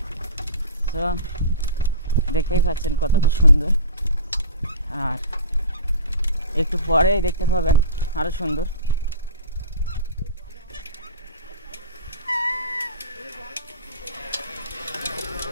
তো দেখতেই পাচ্ছেন কতটা সুন্দর, আর একটু পরেই দেখতে পাবেন আরও সুন্দর।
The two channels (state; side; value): inverted; both; correlation -0.34